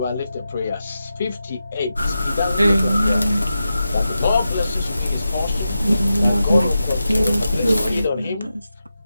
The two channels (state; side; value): inverted; both; correlation -0.90